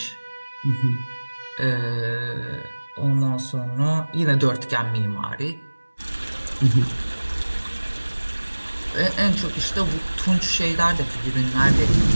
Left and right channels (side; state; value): both; inverted; correlation -1.00